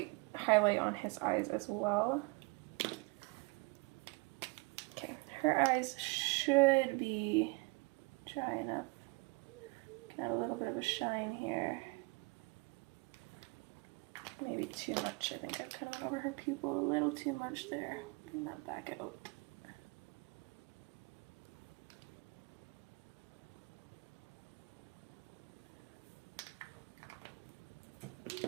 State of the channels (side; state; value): left; quieter; 28.2 dB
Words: highlight on his eyes as well. Okay, her eyes should be dry enough. Add a little bit of a shine here. Maybe too much. I think I've kind of went over her pupil a little too much there. Bring that back out.